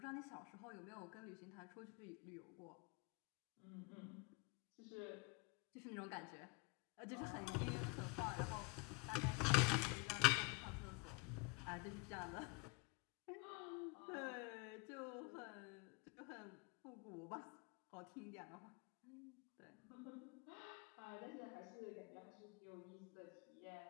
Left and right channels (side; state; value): right; quieter; 28.2 dB